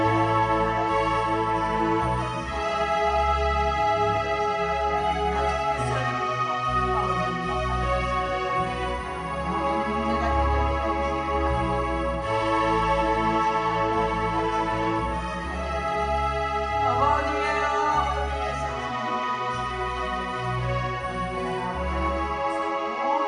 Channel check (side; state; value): both; identical; correlation 1.00